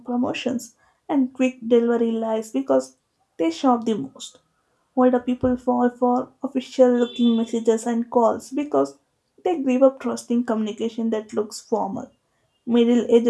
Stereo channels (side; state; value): both; identical; correlation 1.00